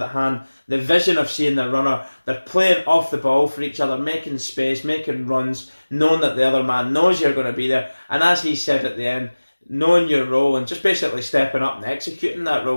a hand, the vision of seeing the runner, they're playing off the ball for each other, making space, making runs, knowing that the other man knows you're going to be there, and as he said at the end, knowing your role and just basically stepping up and executing that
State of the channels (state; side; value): inverted; both; correlation -1.00